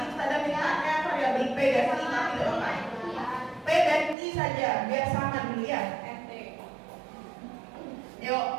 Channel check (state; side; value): drops out; left; at 4.2 s